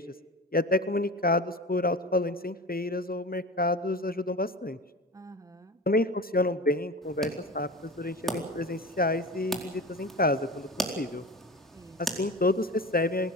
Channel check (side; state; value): both; normal; correlation 0.32